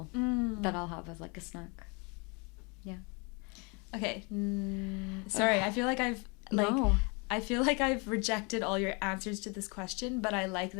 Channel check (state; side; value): quieter; right; 31.3 dB